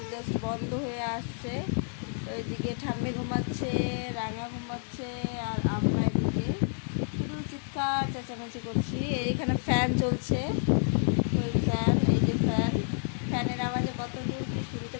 জাস্ট বন্ধ হয়ে আসছে। ওইদিকে ঠাম্মি ঘুমাচ্ছে, রাঙা ঘুমাচ্ছে, আর আমরা এদিকে শুধু চিৎকার চেঁচামেচি করছি। এইখানে ফ্যান চলছে, ওই ফ্যান, এই যে ফ্যান, ফ্যানের আওয়াজে কত দূর কি শুনতে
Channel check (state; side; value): silent; right; 58 dB below the other